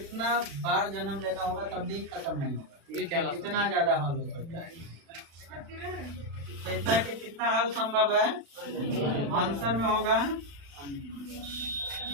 बार जन्म लेना होगा तब भी खत्म नहीं होगा। इतना ज्यादा हल हो सकता है। तो इतना कि कितना हल संभव है? आंसर में होगा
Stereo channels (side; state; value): left; late; 36 ms